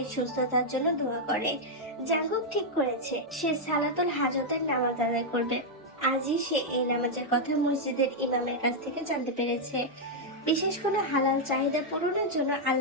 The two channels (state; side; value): normal; both; correlation -0.03